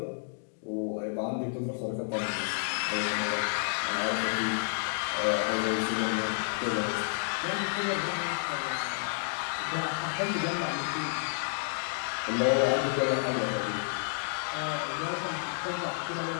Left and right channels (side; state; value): right; silent; digital silence